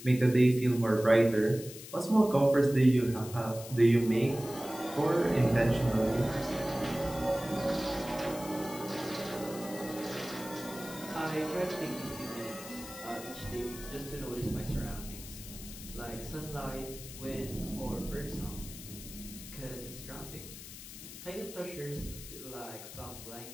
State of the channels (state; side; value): noise; left; hiss, 13 dB below the sound